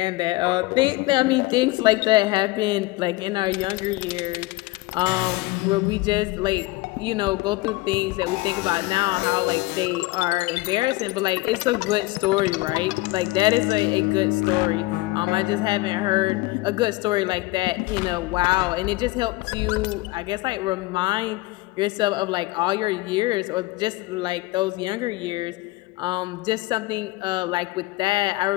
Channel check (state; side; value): quieter; right; 20.9 dB